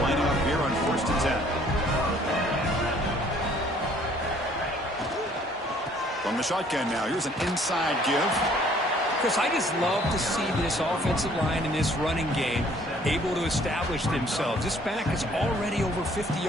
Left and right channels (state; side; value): normal; both; correlation 0.59